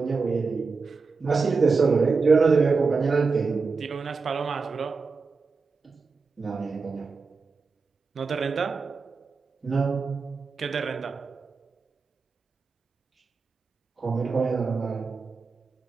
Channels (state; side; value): quieter; left; 4.6 dB